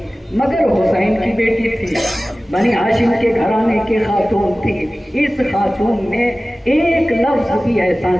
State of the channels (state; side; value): normal; both; correlation 0.97